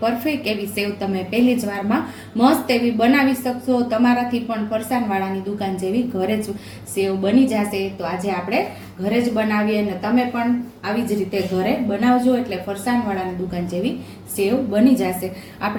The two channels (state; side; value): identical; both; correlation 1.00